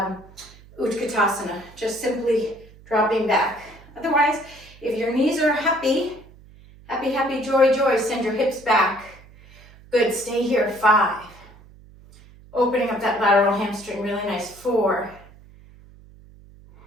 Utkatasana, just simply dropping back. Otherwise, if your knees are happy, happy, happy, joy, joy, send your hips back. Good, stay here, 5. Opening up that lateral hamstring, really nice, 4.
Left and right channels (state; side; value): noise; right; hum, 23 dB below the sound